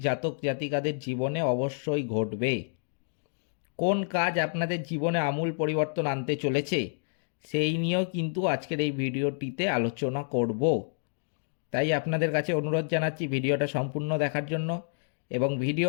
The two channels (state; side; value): silent; right; digital silence